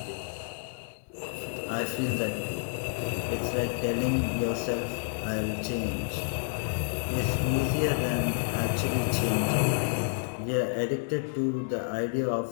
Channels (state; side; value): silent; right; digital silence